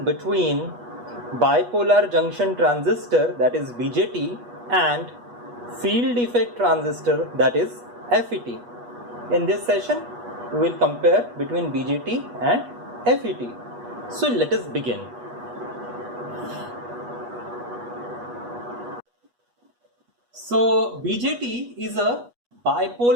between bipolar junction transistor, that is BJT, and field effect transistor, that is FET. In this session we will compare between BJT and FET. So let us begin. So BJT is a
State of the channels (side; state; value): left; late; 8.3 ms